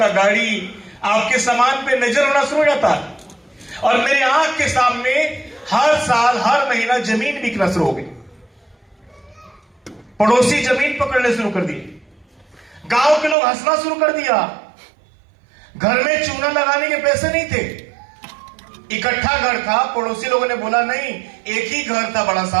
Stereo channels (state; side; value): drops out; left; at 13.4 s